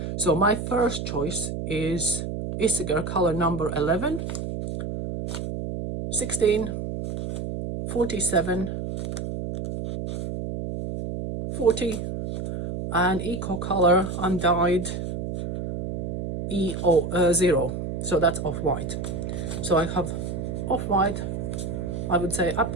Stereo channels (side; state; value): right; noise; hum, 5 dB below the sound